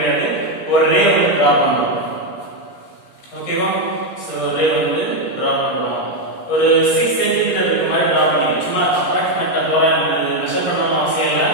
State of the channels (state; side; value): late; right; 17 ms